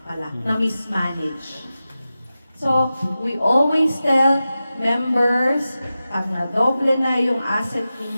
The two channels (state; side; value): inverted; both; correlation -0.93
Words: pala, na-mismanage. So, we always tell members, pag nadoble na yung asset